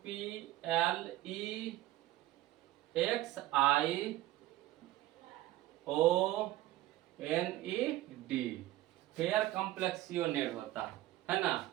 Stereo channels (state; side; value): quieter; left; 15.6 dB